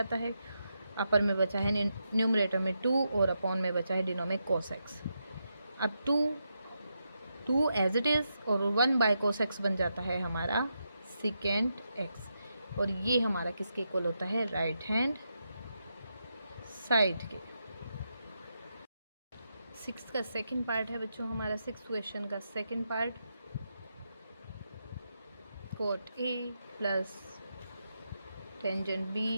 है। अपर में बचा है न्यूमरेटर में 2 और अपॉन में बचा है डिनो में कॉस एक्स। अब 2 एज इट इज़ और 1 बाय कॉस एक्स बन जाता है हमारा सेकेंड एक्स, और ये हमारा किसके इक्वल होता है, राइट हैंड साइड के। 6 का सेकंड पार्ट है बच्चों हमारा, 6 क्वेश्चन का second part, cot A plus tangent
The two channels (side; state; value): both; inverted; correlation -0.84